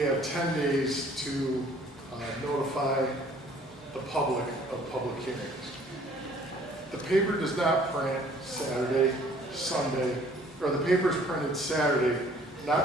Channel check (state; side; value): normal; both; correlation 0.56